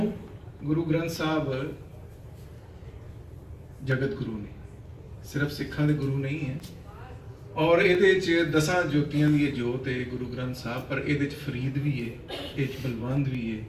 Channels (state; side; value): identical; both; correlation 1.00